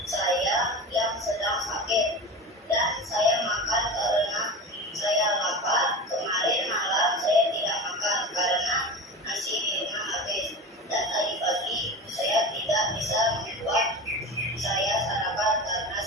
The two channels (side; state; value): both; normal; correlation 0.29